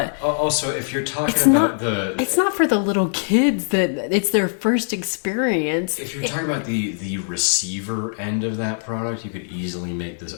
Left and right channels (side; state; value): right; silent; digital silence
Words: also, if you're talking about it's not for the little kids that it's their first experience. If you're talking about the receiver end of that product, you could easily make